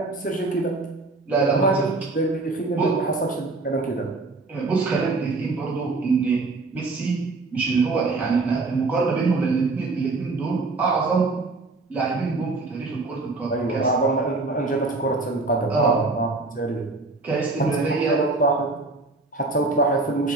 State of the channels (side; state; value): left; quieter; 3.5 dB